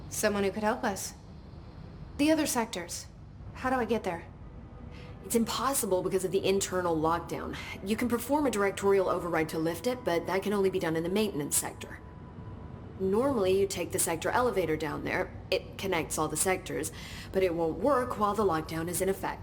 Someone who could help us. The other sectors. How do I get there? It's impossible because of the internal lockdown. You can perform a directorial override to lift it, but that can only be done in the maintenance sector. Normally, you take the sector elevator down there. It connects all the sectors, but it won't work while the lockdown is in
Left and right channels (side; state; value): both; identical; correlation 1.00